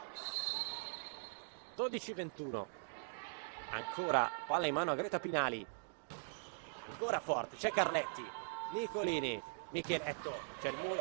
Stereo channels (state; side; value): silent; left; digital silence